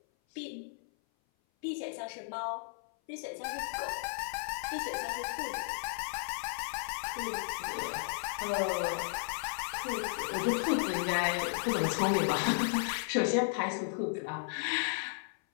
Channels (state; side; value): silent; right; 55 dB below the other